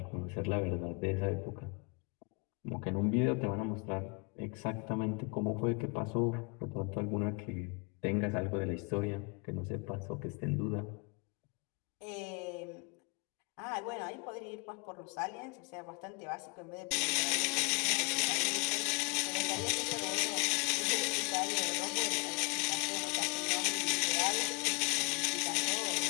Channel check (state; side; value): quieter; right; 31.3 dB